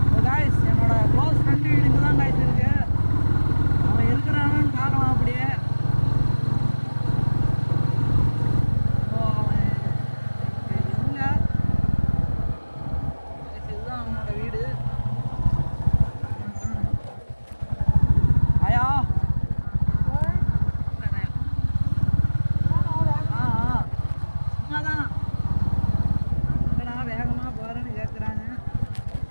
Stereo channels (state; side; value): inverted; both; correlation -1.00